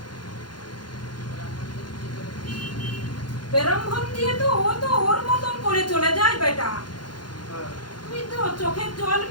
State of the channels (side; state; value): right; late; 0.71 ms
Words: বেরম্ভন দিয়ে তো ও তো ওর মতন করে চলে যায় বেটা। তুই তো চোখের জল